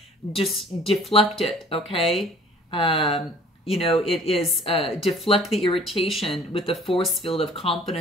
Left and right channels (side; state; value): both; normal; correlation 0.52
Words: just deflect it, okay? It is deflect the irritation with the force field of